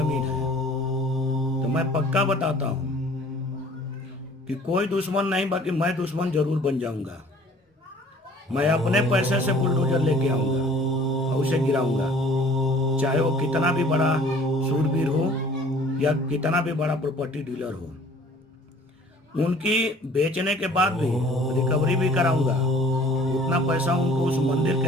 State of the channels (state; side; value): normal; both; correlation 0.51